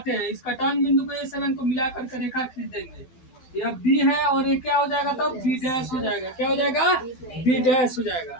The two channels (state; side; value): late; right; 12 ms